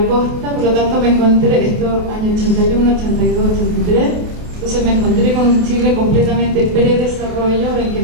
costa. Por lo tanto me encontré, esto año 81, 82, 83, entonces me encontré con un Chile completamente predesarrollo, en que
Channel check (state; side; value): late; left; 28 ms